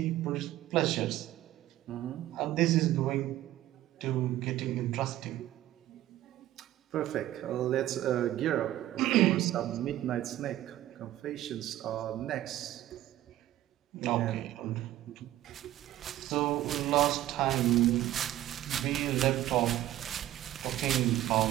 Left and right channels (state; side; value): quieter; left; 14.1 dB